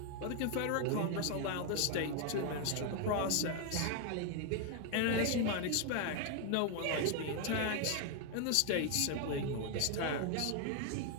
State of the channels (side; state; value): both; different; correlation 0.01